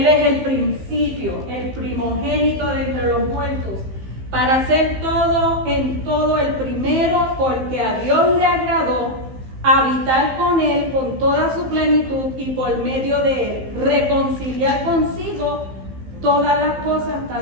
es el principio, el primogénito de entre los muertos, para hacer todo en todo el primero, porque a Dios le agradó habitar con Él con toda su plenitud y por medio de Él reconciliar consigo todas las cosas,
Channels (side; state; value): left; late; 15 ms